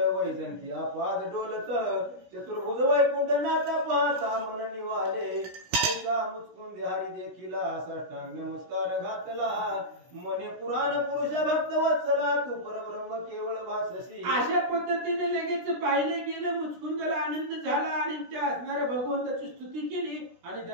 वैजंती आपाद डोलत चतुर्भुज वैकुंठ नाथ पाहता मन निवाले. ऐसा मुचकुंद हरी देखिला साष्टांग नमस्कार घातला मने पुराण पुरुष भक्त वत्सला तू परब्रह्म केवळ भाससी. अशा पद्धतीने लगेच पाहिलं गेलं. मुचकुंदाला आनंद झाला आणि त्या असणाऱ्या भगवंताची स्तुती केली आणि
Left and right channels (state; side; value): late; left; 17 ms